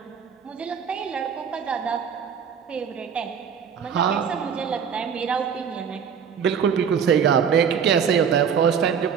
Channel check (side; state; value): left; quieter; 7.3 dB